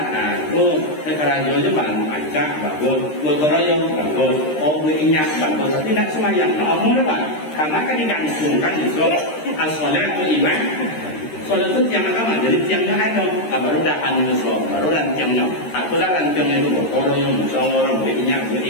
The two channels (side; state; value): right; late; 13 ms